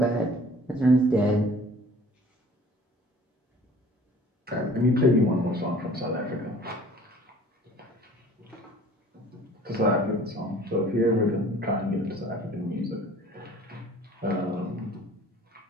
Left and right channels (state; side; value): normal; both; correlation 0.49